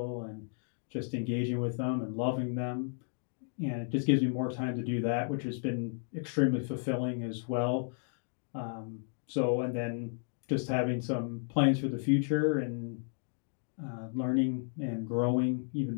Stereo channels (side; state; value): right; silent; digital silence